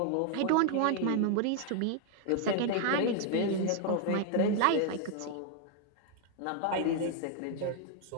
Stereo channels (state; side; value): different; both; correlation 0.00